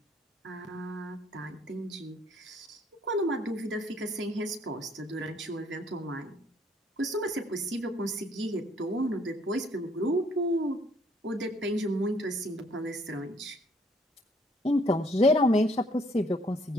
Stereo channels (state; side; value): normal; both; correlation 0.63